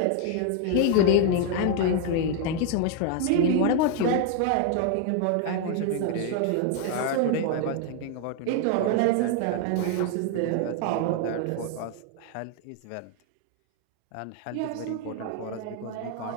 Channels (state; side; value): different; both; correlation 0.00